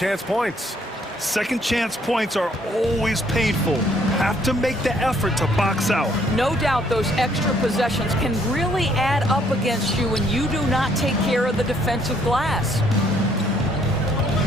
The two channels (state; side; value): normal; both; correlation 0.66